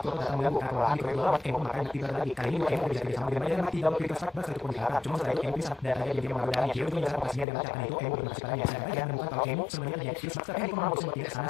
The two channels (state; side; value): drops out; right; at 7.5 s